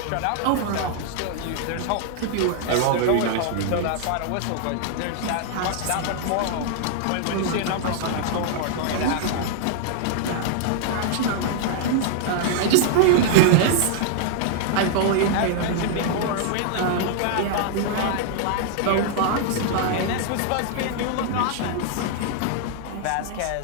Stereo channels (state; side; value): different; both; correlation -0.01